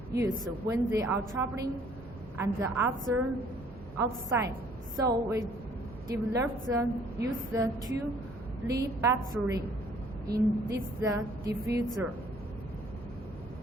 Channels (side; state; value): both; normal; correlation 0.59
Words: use when they are traveling and the other outside. So we developed use the 2-lead battery in this diffuser.